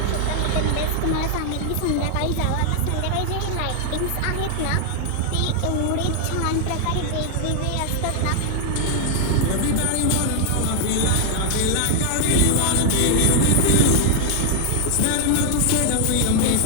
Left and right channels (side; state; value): both; different; correlation 0.00